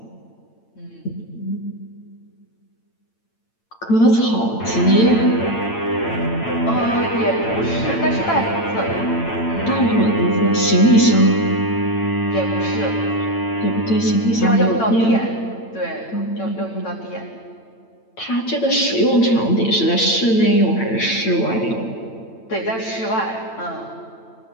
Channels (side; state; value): right; late; 8.9 ms